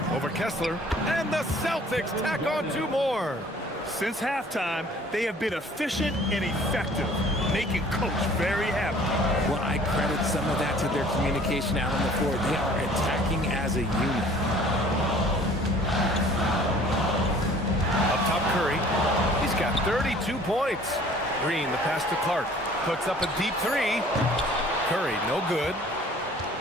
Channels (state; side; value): normal; both; correlation 0.52